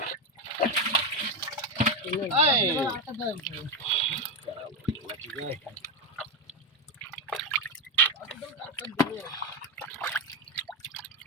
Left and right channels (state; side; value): normal; both; correlation 0.10